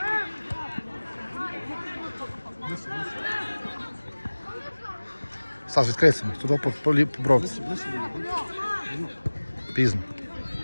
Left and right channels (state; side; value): inverted; both; correlation -1.00